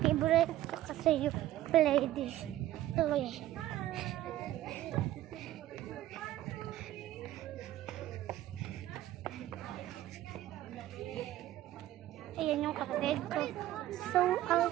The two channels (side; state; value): left; quieter; 14.1 dB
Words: ko kasi yung play this. Ito eh. Ayan yung kapatid ko. So,